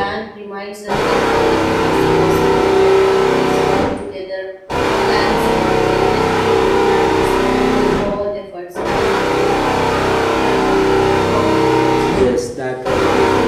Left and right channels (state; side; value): identical; both; correlation 1.00